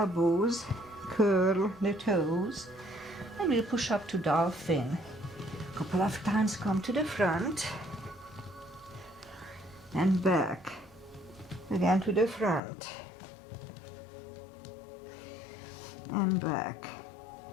curl the toes, and we'll push up to dolphin. A couple of times, come to the front and back. Again to the front. And back.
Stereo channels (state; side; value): drops out; right; at 12.6 s